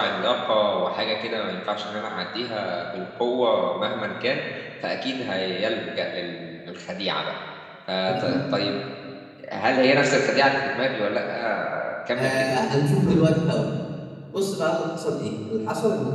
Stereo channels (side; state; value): both; identical; correlation 1.00